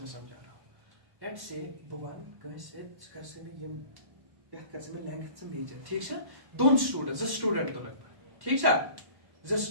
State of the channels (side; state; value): left; late; 1.1 ms